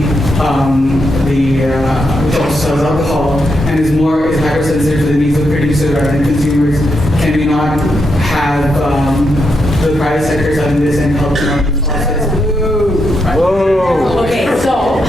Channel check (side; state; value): both; normal; correlation 0.82